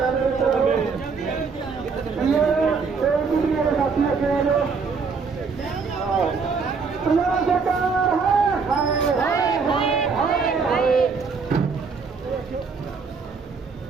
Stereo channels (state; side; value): quieter; left; 5.1 dB